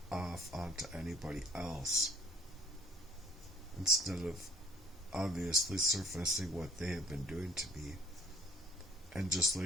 off onto anybody else. Instead of obviously surfacing what they have been doing to me. And just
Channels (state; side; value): normal; both; correlation 0.54